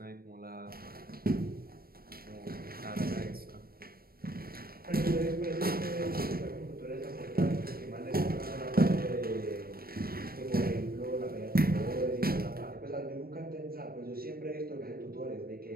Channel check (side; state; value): left; late; 0.44 ms